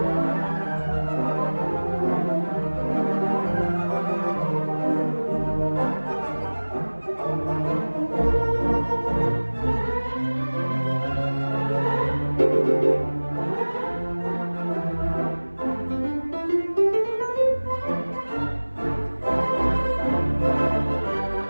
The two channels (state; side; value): inverted; both; correlation -1.00